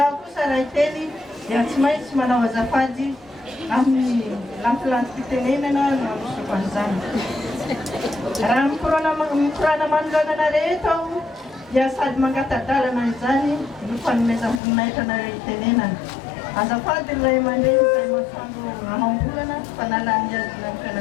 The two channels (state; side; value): drops out; right; at 14.6 s